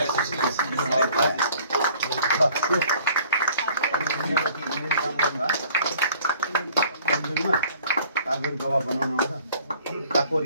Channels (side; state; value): both; inverted; correlation -0.54